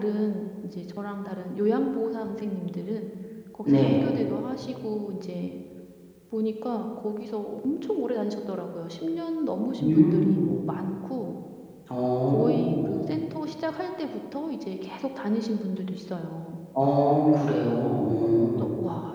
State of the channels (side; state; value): both; identical; correlation 1.00